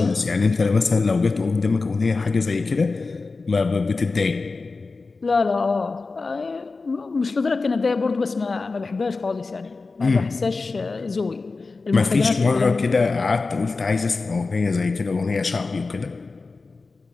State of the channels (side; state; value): right; quieter; 3.9 dB